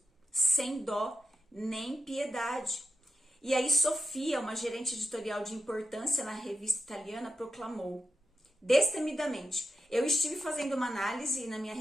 sem dó nem piedade. E aí Sofia, uma gerente editorial de importância na revista italiana, proclamou destemidamente: eu estive fazendo uma análise na minha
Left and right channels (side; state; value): both; normal; correlation 0.88